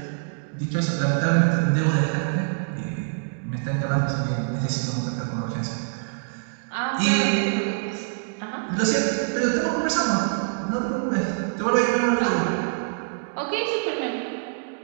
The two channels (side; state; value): left; silent; digital silence